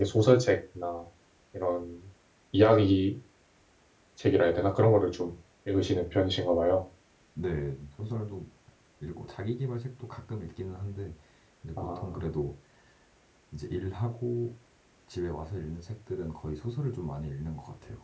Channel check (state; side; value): identical; both; correlation 1.00